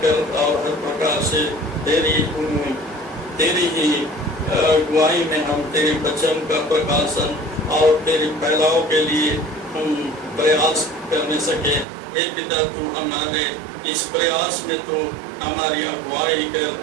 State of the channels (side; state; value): left; drops out; at 11.9 s